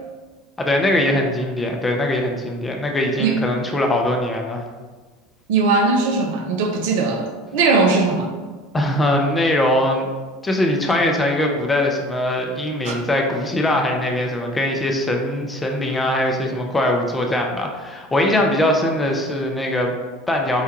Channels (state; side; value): normal; both; correlation 0.44